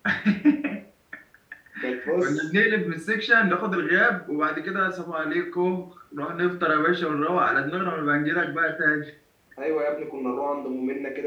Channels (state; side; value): identical; both; correlation 1.00